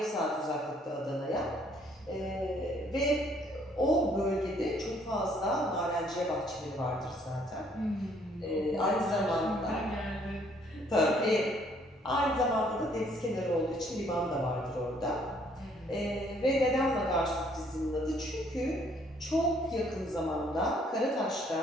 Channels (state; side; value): normal; both; correlation 0.64